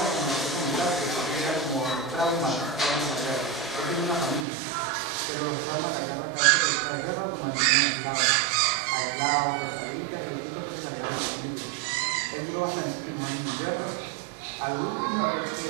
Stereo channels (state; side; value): drops out; left; at 4.5 s